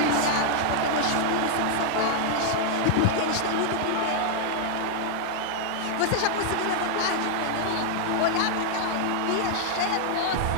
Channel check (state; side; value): different; both; correlation -0.01